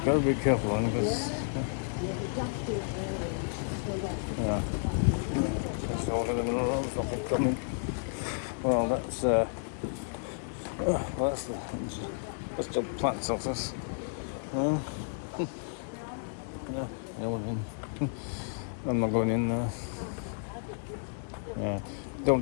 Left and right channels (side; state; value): right; silent; 57 dB below the other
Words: gotta be careful, because just over the middle of the road, there's nothing coming. Well, that's the plant's office. I'm not going in there.